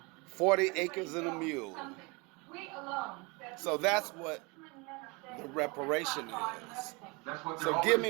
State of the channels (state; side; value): quieter; left; 28.0 dB